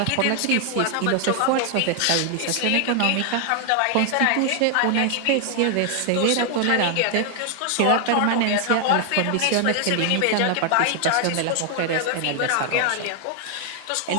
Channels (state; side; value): different; both; correlation 0.00